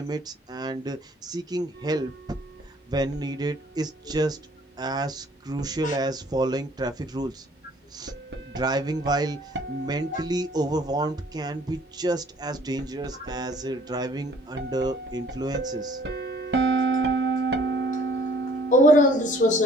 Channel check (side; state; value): both; normal; correlation 0.56